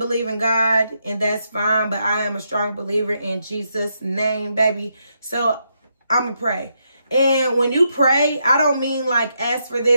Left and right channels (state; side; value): inverted; both; correlation -0.80